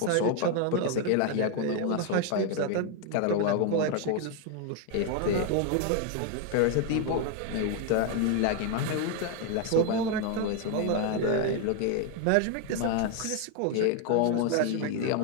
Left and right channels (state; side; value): different; both; correlation 0.01